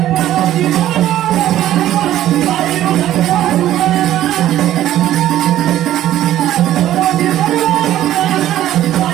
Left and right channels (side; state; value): left; quieter; 12.9 dB